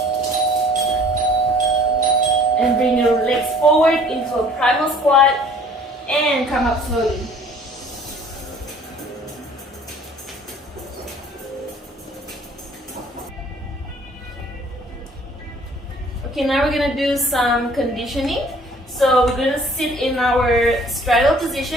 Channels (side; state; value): both; normal; correlation 0.53